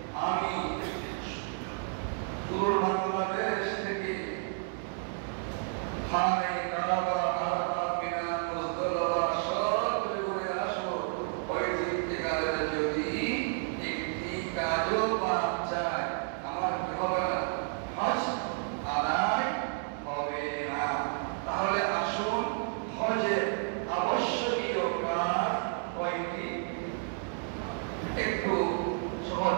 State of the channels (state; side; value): silent; left; 55 dB below the other